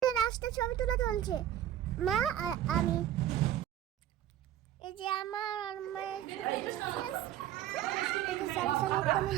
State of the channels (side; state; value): left; quieter; 11.8 dB